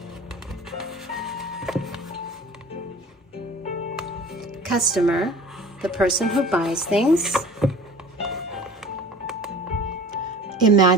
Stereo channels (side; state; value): both; normal; correlation 0.43